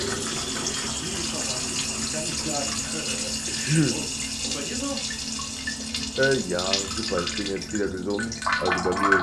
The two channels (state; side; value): identical; both; correlation 1.00